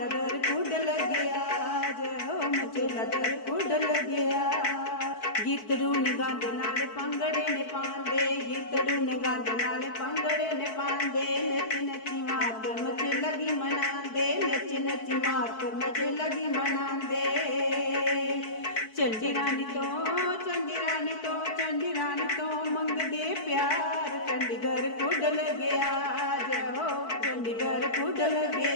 दर कुड लग्या जय हो मचेला दर कुड लग्या। गीतड़ू ने गंद नाल पंगड़े ने पांदे गीतड़ू ने गंद नाल पंगड़े ने पांदे नच नची मात मचे लगी मनांदे नच नची मात मचे लगी मनांदे। चंडी रानी तो मंगदे प्यार चंडीगढ़ कुड लग्या जय हो चंडीगढ़ कुड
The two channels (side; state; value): right; late; 4.6 ms